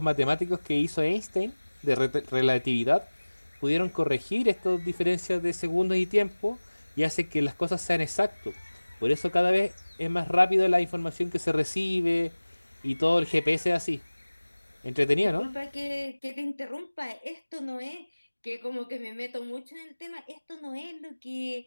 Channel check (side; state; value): both; inverted; correlation -1.00